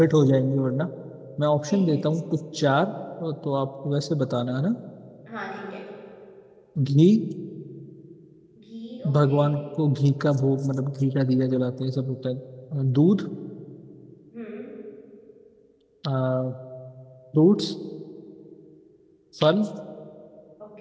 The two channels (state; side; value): identical; both; correlation 1.00